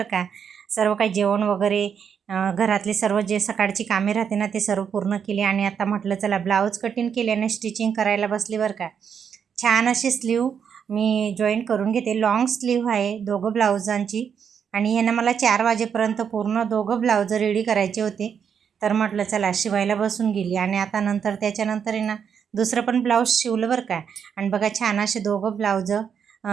का। सर्व काही जेवण वगैरे घरातले सर्व जे सकाळची कामे राहते ना ते सर्व पूर्ण केली आणि आता म्हटलं चला ब्लाऊज कटिंग केले आणि स्टिचिंग करायला बसली बरं का। छान अशी स्लीव मी जॉईन करून घेते। लॉंग स्लीव आहे दोघं ब्लाऊजांची आणि यांना मला 4 वाजेपर्यंत पूर्ण दोघं ब्लाऊज रेडी करायचे होते। तर म्हटलं चला शिवायला बसून गेली आणि आता नंतर त्याच्यानंतर आहे ना दुसरं पण ब्लाऊज शिवलं बरं का। आणि बघा छान असे दोघं ब्लाऊज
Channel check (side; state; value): left; quieter; 7.4 dB